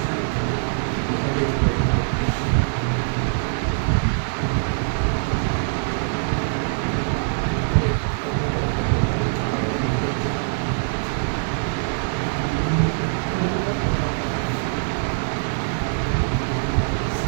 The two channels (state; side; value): silent; left; digital silence